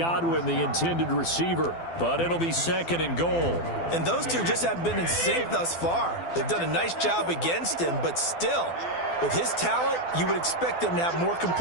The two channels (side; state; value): right; late; 12 ms